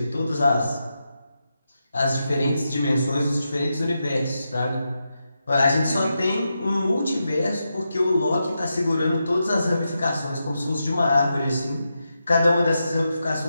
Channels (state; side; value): inverted; both; correlation -0.87